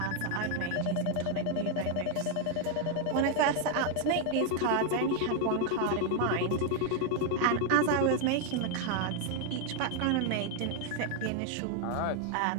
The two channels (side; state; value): both; different; correlation 0.00